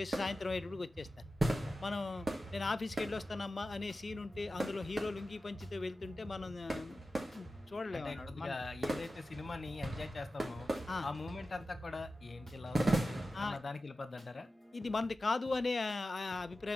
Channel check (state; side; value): normal; both; correlation 0.94